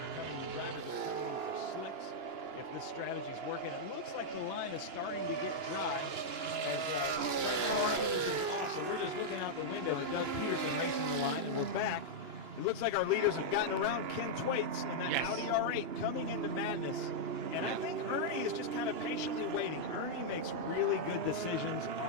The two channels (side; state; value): left; late; 2.9 ms